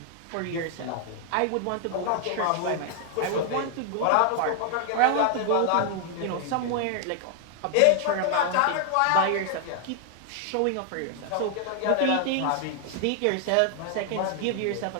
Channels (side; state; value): both; different; correlation 0.00